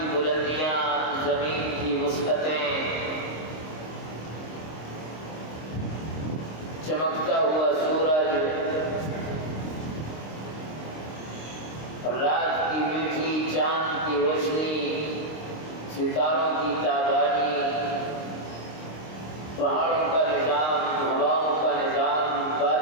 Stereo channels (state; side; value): late; right; 26 ms